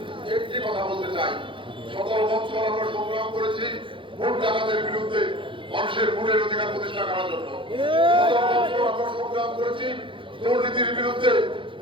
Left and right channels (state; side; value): late; left; 0.25 ms